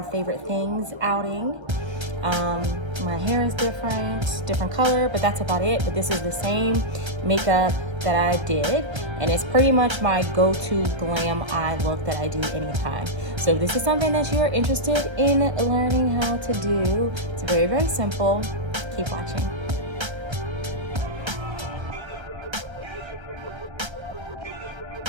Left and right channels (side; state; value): left; late; 1.3 ms